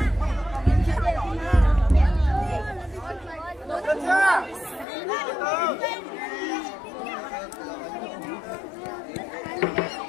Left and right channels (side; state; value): right; drops out; at 4.9 s